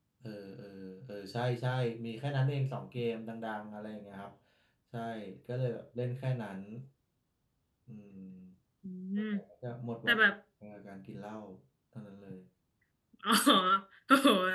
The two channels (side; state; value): both; identical; correlation 1.00